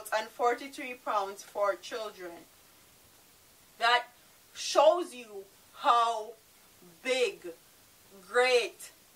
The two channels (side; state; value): both; identical; correlation 1.00